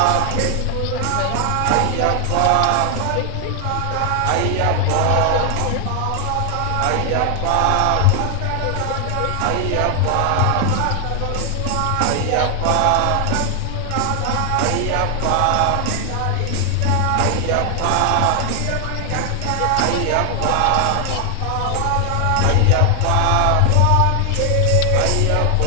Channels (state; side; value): different; both; correlation 0.00